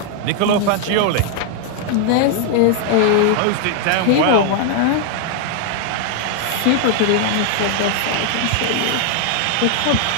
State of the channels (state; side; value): different; both; correlation 0.00